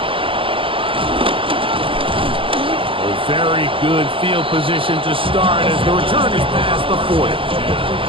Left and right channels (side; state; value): left; late; 0.25 ms